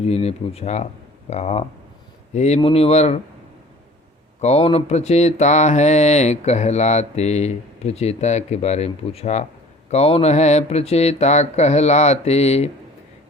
ने पूछा, कहा, हे मुनिवर, कौन प्रचेता है कहलाते। प्रचेता के बारे में पूछा, कौन है प्रचेता कहलाते।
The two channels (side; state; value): both; normal; correlation 0.47